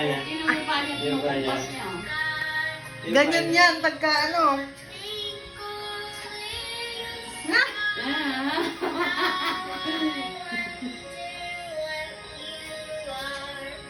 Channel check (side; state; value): both; identical; correlation 1.00